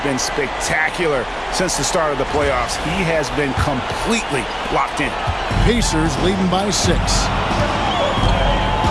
been spectacular since the start of the playoffs. He has been completely locked in. Pacers leading by 6.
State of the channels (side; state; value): both; identical; correlation 1.00